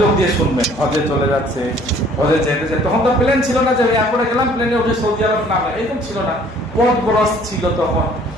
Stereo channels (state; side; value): normal; both; correlation 0.56